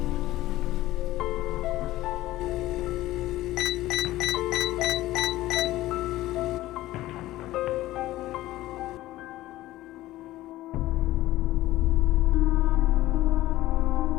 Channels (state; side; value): quieter; right; 16.2 dB